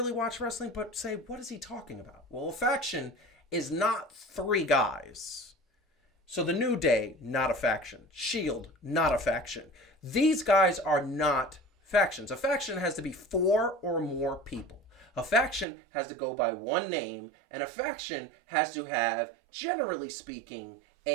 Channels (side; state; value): left; drops out; at 15.7 s